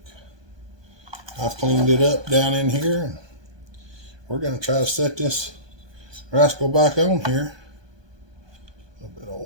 I've cleaned it up down in here, and we're going to try to set this rascal back on here. A little bit of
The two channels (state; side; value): late; left; 1.2 ms